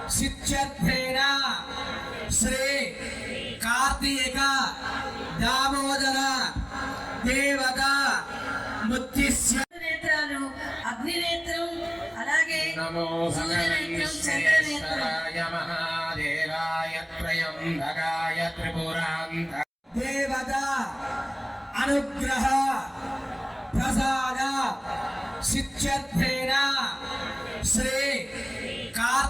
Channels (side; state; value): both; identical; correlation 1.00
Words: సిద్ధ్యేన శ్రీ కార్తీక దామోదర దేవత ముత్తిస్య నేత్రాలు అగ్నినేత్రం అలాగే నమో భగవన్శ్రేశ్వరాయ మహాదేవాయ త్రయంబకాయ త్రిపురాంత దేవత అనుగ్రహ ప్రసాద సిద్ధ్యేన శ్రీ